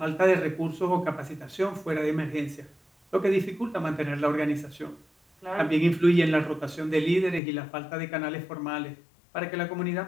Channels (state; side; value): drops out; right; at 7.4 s